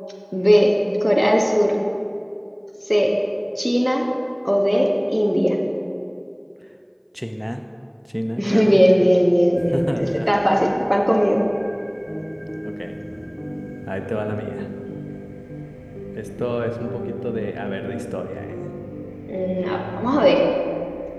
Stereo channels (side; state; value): both; identical; correlation 1.00